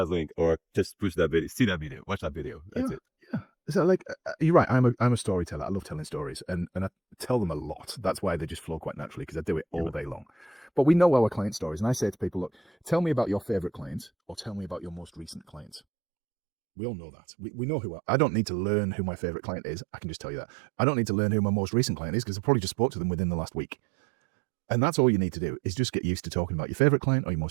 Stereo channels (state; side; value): drops out; left; at 15.8 s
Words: link or just push that video, see that video, watch that video. That's it. Yeah. So like, you're right. I'm a storyteller. I love telling stories and I tell them a lot. That's why they just flow quite naturally because I do it all day long. But we know our client stories. And I say to people, look, tell me about your favorite client or tell me about your most recent client. We all know that. We know I don't need to learn who my favorite client is. I can just tell you that. I don't need to learn who my most recent client is because I probably just spoke to them within the last week. And that's all you need to do is just get used to talking about your favorite client or your